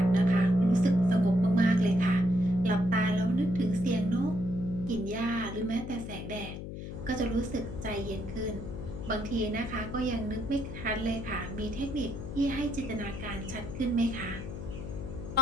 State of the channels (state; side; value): noise; left; hum, 8 dB below the sound